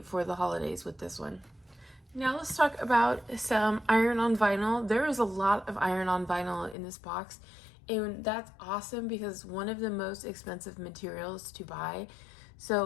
for the holidays with this one. Now let's talk about some iron-on vinyl. There is a lot of iron-on vinyl in this box, and that's awesome because it's one of the most expensive materials to buy.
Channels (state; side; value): drops out; right; at 6.8 s